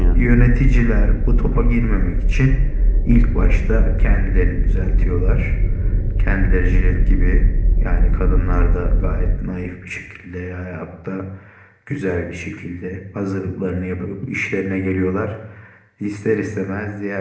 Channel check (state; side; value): identical; both; correlation 1.00